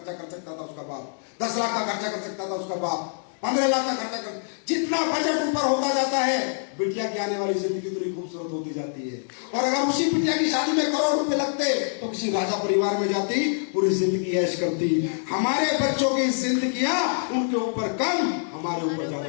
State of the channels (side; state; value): right; silent; digital silence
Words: कर सकता था उसका बाप, 10 लाख का खर्चा कर सकता था उसका बाप, 15 लाख का खर्चा कर। जितना बजट ऊपर होता जाता है, बिटिया की आने वाली जिंदगी उतनी खूबसूरत होती जाती है। और अगर उसी बिटिया की शादी में करोड़ रुपए लगते तो किसी राजा परिवार में जाती, पूरी जिंदगी ऐश करती। हमारे बच्चों की जिंदगियां उनके ऊपर कम, हमारे ऊपर ज्यादा